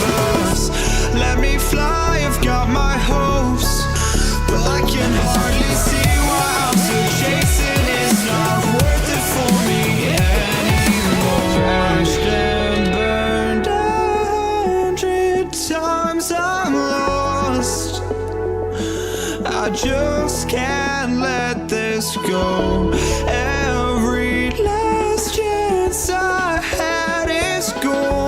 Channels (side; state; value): both; identical; correlation 1.00